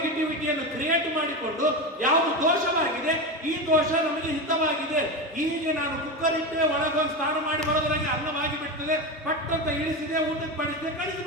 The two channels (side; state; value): both; normal; correlation 0.19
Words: ಕ್ರಿಯೇಟ್ ಮಾಡಿಕೊಂಡು ಯಾವುದು ದೋಷವಾಗಿದೆ, ಈ ದೋಷ ನಮಗೆ ಹಿತವಾಗಿದೆ, ಹೀಗೆ ನಾನು ಕುಕ್ಕರ್ ಇಟ್ಟೆ, ಒಳಗೊಂದು ಸ್ನಾನ ಮಾಡಿ ಬರೋದ್ರಾಗೆ ಅನ್ನವಾಗಿ ಬಿಡ್ತದೆ, ಪಟ್ಟಂತ ಇಳಿಸಿದೆ, ಊಟಕ್ಕೆ ಬಡಿಸಿದೆ,